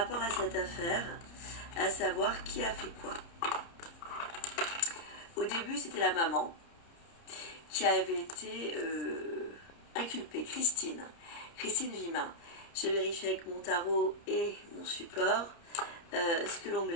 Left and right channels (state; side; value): late; right; 30 ms